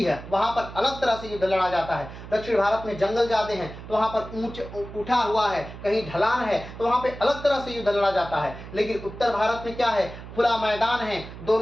है, वहां पर अलग तरह से युद्ध लड़ा जाता है। दक्षिण भारत में जंगल ज्यादा हैं, तो वहां पर उठा हुआ है, कहीं ढलान है, तो वहां पे अलग तरह से युद्ध लड़ा जाता है। लेकिन उत्तर भारत में क्या है? खुला मैदान है,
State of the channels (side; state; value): right; noise; hum, 13 dB below the sound